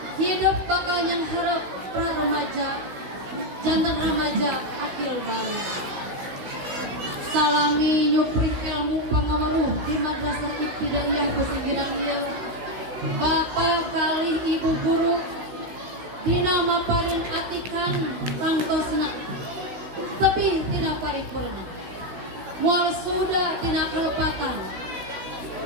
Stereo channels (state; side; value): late; left; 16 ms